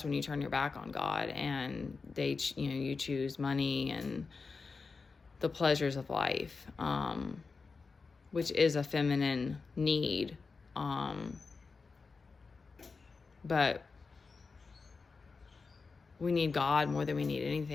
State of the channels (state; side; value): quieter; right; 4.5 dB